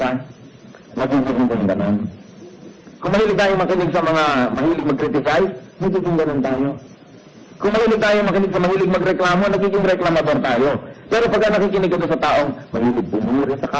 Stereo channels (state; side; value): identical; both; correlation 1.00